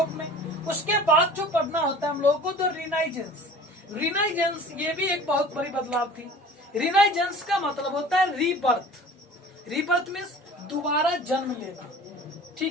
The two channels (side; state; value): both; normal; correlation 0.43